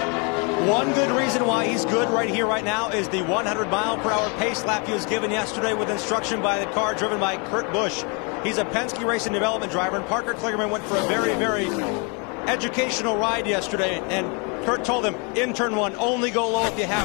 One good reason why he's good right here, right now, is the 100-mile-per-hour pace lap he was given yesterday with instruction by the car driven by Kurt Busch. He's a Penske Racing Development driver, and Parker Kligerman went for a very, very educational ride yesterday, and Kurt told him, in turn 1, only go low if you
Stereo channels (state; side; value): quieter; right; 33.6 dB